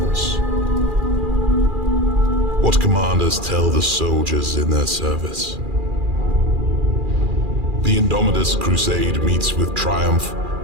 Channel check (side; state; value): left; late; 2.4 ms